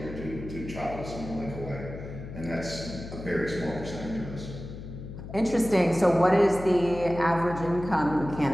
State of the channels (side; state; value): left; noise; hum, 11 dB below the sound